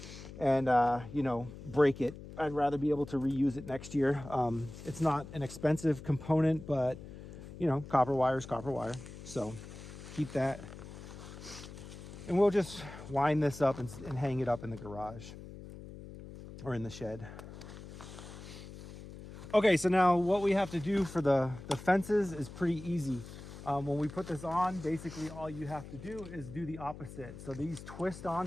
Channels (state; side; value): noise; left; hum, 14 dB below the sound